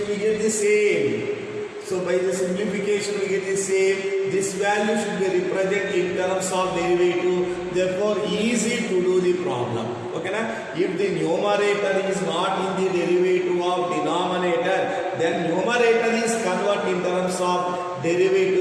we get the same. So by the simplification we get the same. This value should be represented in terms of derivative. Therefore easy to do the problem. Okay na? If the numerator is not in the derivative of denominator, then numerator is converted in terms of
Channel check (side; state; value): both; identical; correlation 1.00